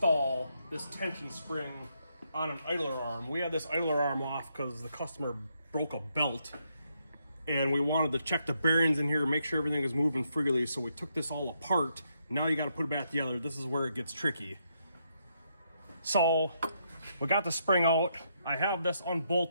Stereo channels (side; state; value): both; inverted; correlation -0.77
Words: this tension spring on an idler arm. We had this idler arm off because the customer broke a belt, and we wanted to check the bearings in here and make sure everything is moving freely, so we took this all apart. Now you got to put it back together. This is where it gets tricky. So we got the spring out. I have this